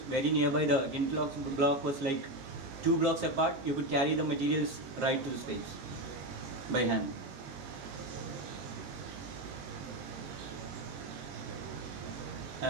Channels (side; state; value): left; late; 21 ms